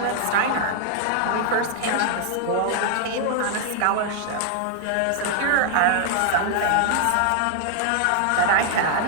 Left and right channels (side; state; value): both; different; correlation -0.01